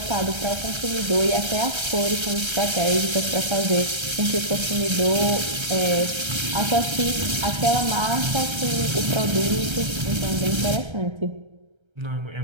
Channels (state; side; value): late; left; 1.3 ms